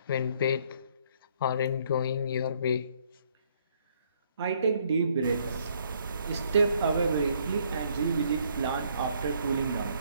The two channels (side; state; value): both; inverted; correlation -0.66